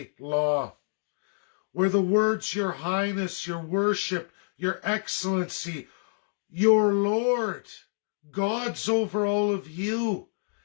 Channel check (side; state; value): right; silent; digital silence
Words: law, where the words Your Highness, Your Worship, Your Excellency, Your Lord, God's over all of you,